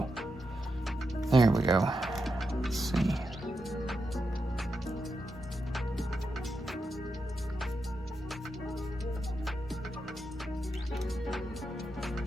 There we go. Let's see.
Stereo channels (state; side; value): normal; both; correlation 0.86